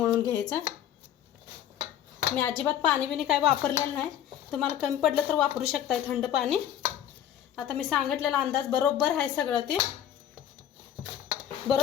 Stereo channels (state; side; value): quieter; right; 10.6 dB